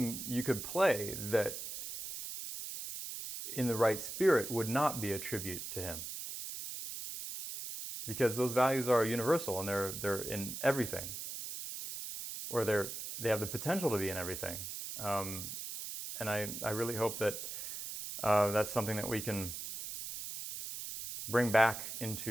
you could play that in the right spirit would not be a tribute to him. Because those values are universal and they're in everything. Or they have the potential to be in everything. And I really hope that that's something that we can bring back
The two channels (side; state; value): right; noise; hiss, 7 dB below the sound